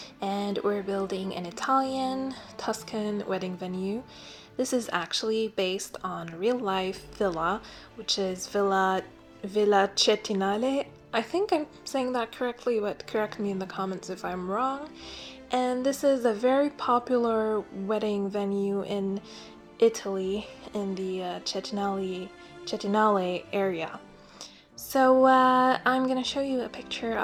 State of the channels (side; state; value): both; identical; correlation 1.00